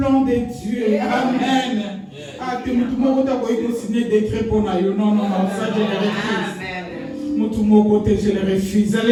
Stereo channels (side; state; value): both; identical; correlation 1.00